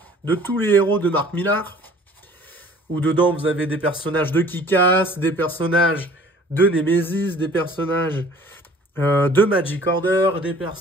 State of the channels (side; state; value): both; normal; correlation 0.51